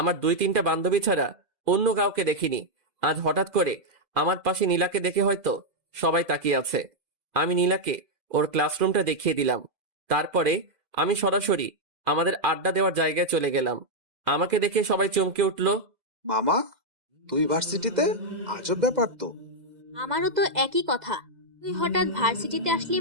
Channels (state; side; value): late; left; 2.0 ms